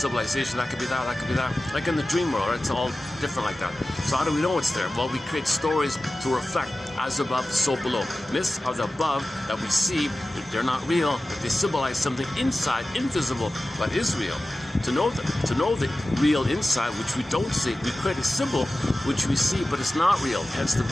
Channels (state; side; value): normal; both; correlation 0.95